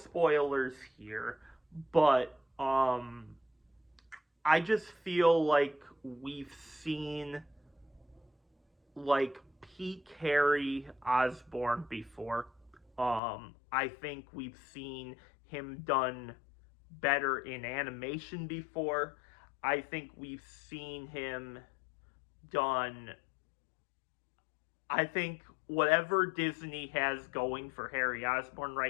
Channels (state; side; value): drops out; right; at 13.2 s